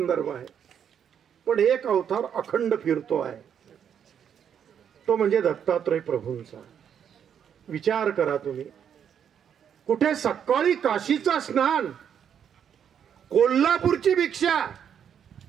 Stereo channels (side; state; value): left; quieter; 8.4 dB